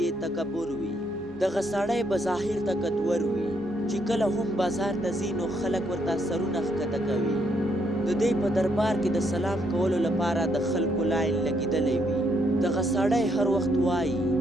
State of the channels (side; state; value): both; normal; correlation 0.74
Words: یې تکبر وي. دغه سړی به ظاهر طاقتور وي، چې کله هم بازار ته ځي نو خلک ورته سرونه ښکته کوي. د دې په دربار کې د سلام کولو لپاره د خلکو لاین لګېدلی وي. دغه سړی هر وخت وایي